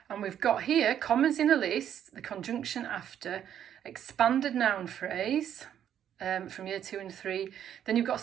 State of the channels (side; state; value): left; quieter; 9.8 dB